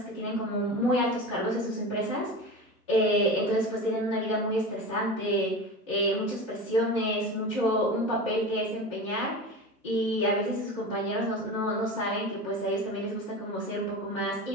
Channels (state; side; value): normal; both; correlation 0.30